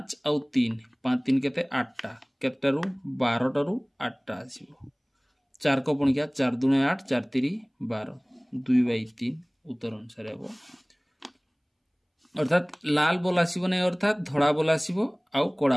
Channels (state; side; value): identical; both; correlation 1.00